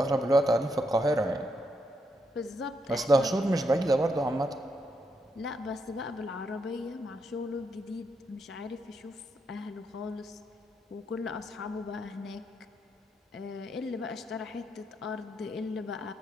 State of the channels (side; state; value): both; normal; correlation 0.80